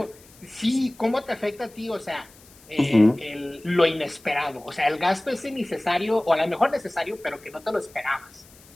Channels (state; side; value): noise; left; hiss, 25 dB below the sound